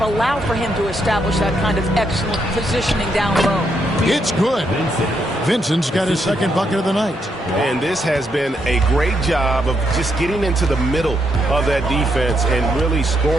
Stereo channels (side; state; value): both; normal; correlation 0.78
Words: allow for him to establish that kind of excellent positioning down low. It's good. Vincent's got his second bucket of the night. And this has been a great job of just getting into the middle of that defense and really